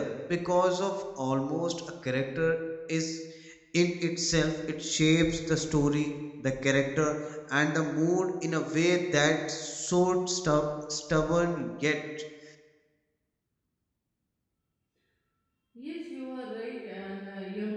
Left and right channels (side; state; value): both; identical; correlation 1.00